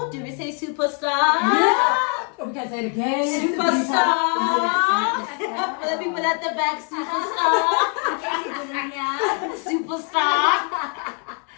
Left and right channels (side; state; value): right; quieter; 38.8 dB